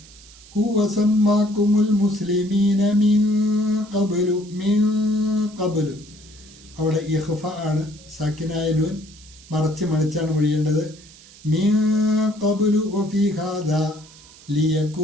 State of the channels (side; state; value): right; noise; hiss, 22 dB below the sound